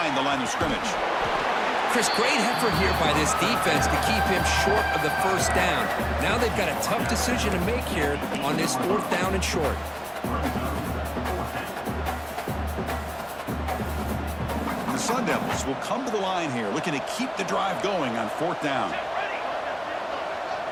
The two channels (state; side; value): identical; both; correlation 1.00